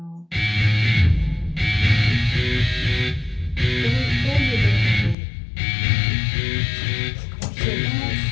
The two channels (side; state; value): right; drops out; at 5.2 s